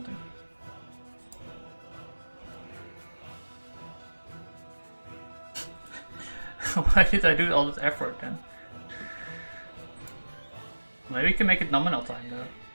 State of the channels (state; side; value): inverted; both; correlation -1.00